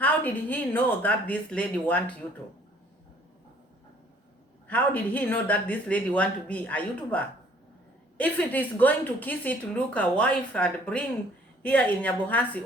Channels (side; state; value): both; normal; correlation 0.58